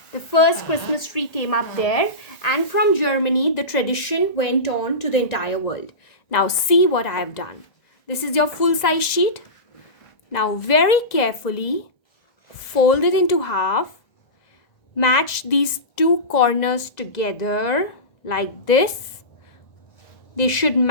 The first Christmas tree came up there, and from Germany the tradition went on to the entire world. Now see what I have done. This is your full-size sheet. Now very carefully fold it into half. Match these two corners together like this. They should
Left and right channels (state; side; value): late; right; 1.9 ms